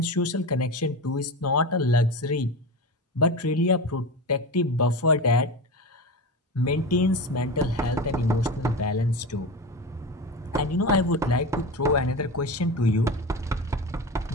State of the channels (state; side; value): normal; both; correlation 0.25